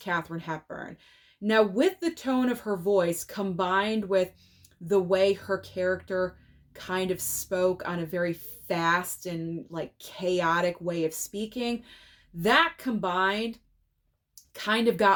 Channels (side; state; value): both; identical; correlation 1.00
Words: Hepburn. Now, with the tone of her voice combined with the way her character kind of spoke on a very fast and chaotic way of speaking, that combined kind of